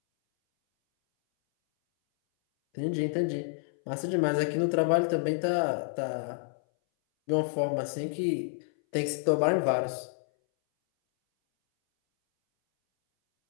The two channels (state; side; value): silent; right; 59 dB below the other